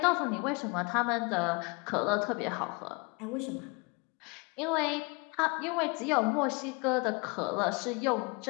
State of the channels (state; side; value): quieter; right; 29.8 dB